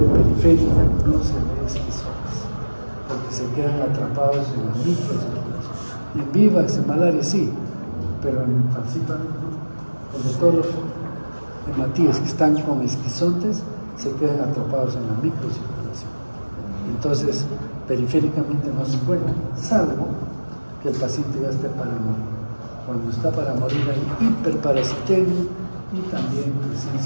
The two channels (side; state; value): both; inverted; correlation -1.00